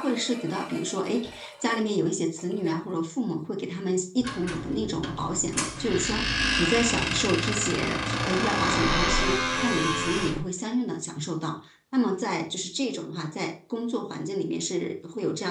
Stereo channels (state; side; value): identical; both; correlation 1.00